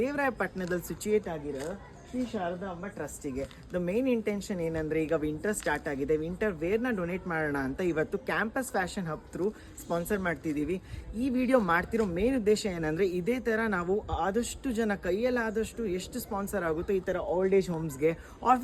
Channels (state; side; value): identical; both; correlation 1.00